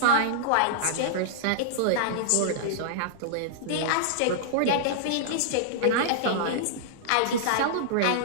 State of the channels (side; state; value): both; different; correlation -0.02